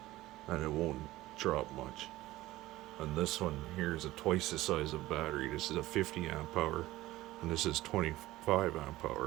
and it won't drop much. And this one here is twice the size of battery. This is a 50 amp hour and this is 25 amp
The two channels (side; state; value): left; quieter; 17.0 dB